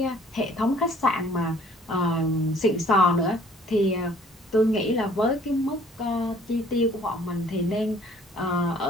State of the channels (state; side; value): normal; both; correlation 0.57